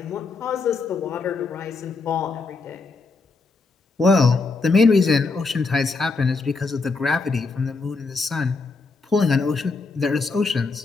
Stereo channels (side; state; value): right; quieter; 4.1 dB